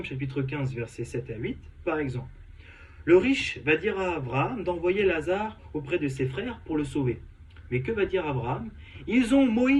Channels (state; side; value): identical; both; correlation 1.00